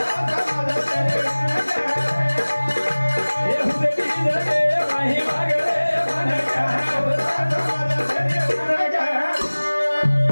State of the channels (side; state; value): both; inverted; correlation -1.00